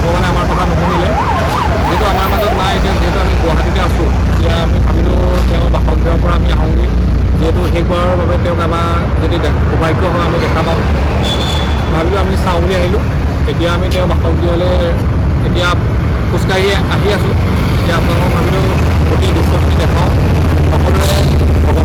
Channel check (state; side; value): identical; both; correlation 1.00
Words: আমাৰ কথা নুশুনিলে। যিহেতু আমাৰ মাজত নাই, এতিয়া যিহেতু আমি গুৱাহাটীতে আছোঁ, এতিয়া আমি ভাবিলোঁ তেওঁ বাসগৃহৰ পৰা আমি আহোঁগৈ, যিহেতু শেষবাৰৰ বাবে তেওঁক আমাৰ যদি সৌভাগ্য হয় আমি দেখা পাওঁ, ভাবিলোঁ আমি চাওঁ বুলি আহিলোঁ। এতিয়া আমি তেওঁ বাসগৃহলৈ এতিয়া খোজকাঢ়ি আহি আছোঁ। এতিয়া আপোনালোকক ভাবিলোঁ গোটেই দৃশ্যখিনি দেখাওঁ, সকলোৱে